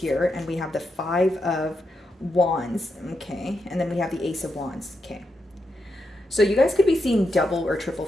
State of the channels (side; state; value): both; normal; correlation 0.84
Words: and we have the Five of Wands. Okay. And then we have the Ace of Wands. Okay. So you guys could be seeing double or triple